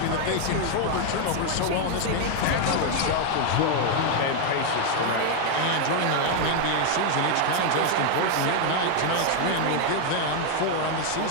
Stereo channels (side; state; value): both; different; correlation 0.01